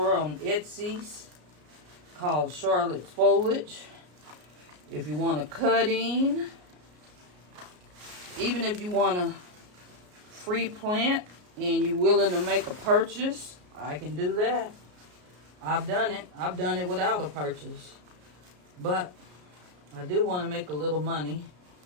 on Etsy called Charlotte's Foliage. If you want a cutting, even if you want a free plant and you're willing to make a purchase, I can do that. I've done it. I've done it without a purchase. But I do want to make a little money.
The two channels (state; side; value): late; left; 33 ms